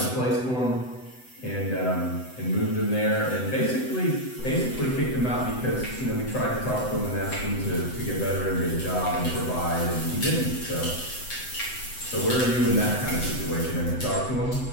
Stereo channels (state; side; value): late; right; 7.9 ms